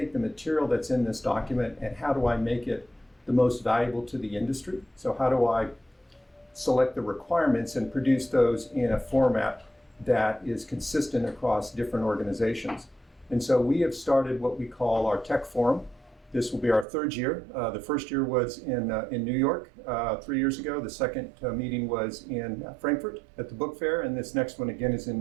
the material that's in this document and how do I make it the most valuable to the industry? So how do I select the requirements and produce those in a format that is consistent across different organizations? And so we have started what we call our tech forum. This will be our third year. The first year was in New York 3 years ago. The second meeting was in Frankfurt at the book fair, and this next one again is in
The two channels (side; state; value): left; drops out; at 16.9 s